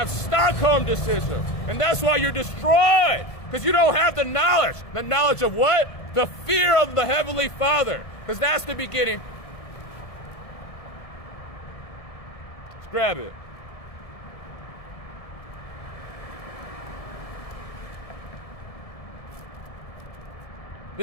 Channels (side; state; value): right; late; 1.5 ms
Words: Stockholm syndrome. And that's why you're destroyed. Because you don't have the knowledge. The knowledge of what? The fear of the Heavenly Father. Because that's the beginning. Let's grab it.